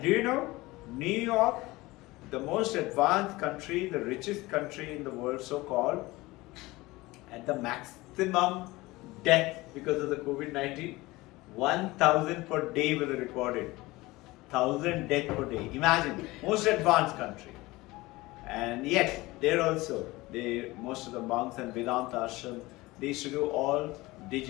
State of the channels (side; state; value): right; quieter; 20.5 dB